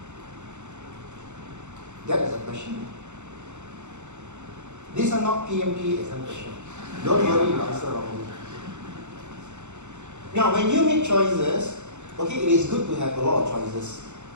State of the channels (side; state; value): left; late; 0.83 ms